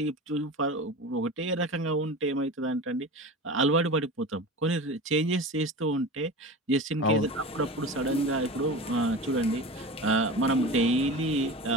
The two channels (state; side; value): normal; both; correlation 0.30